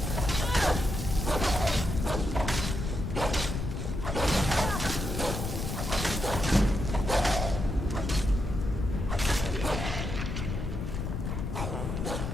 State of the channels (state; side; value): noise; left; rumble, 3 dB below the sound